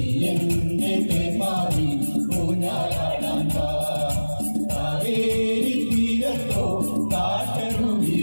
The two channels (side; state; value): both; inverted; correlation -1.00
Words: എന്റെ തേന്മാരി ഊഞ്ഞാലാടാൻ വാ. കാവേരി തീരത്തോ